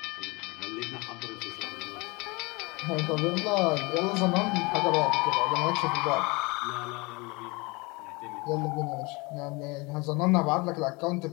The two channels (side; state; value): right; quieter; 26.3 dB